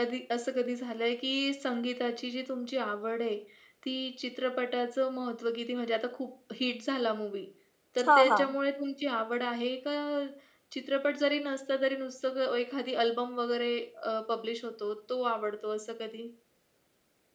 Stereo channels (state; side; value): identical; both; correlation 1.00